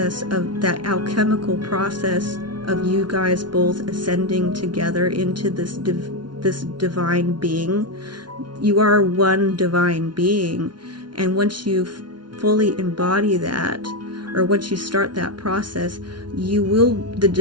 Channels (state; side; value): late; left; 0.71 ms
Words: of that alchemical process of you guys both ascending together into this divine being. You are one divine being, and once you fully embody that, or once you start that process, the